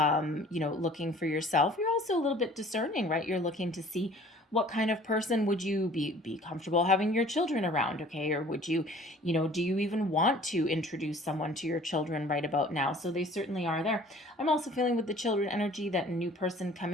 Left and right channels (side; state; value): both; normal; correlation 0.51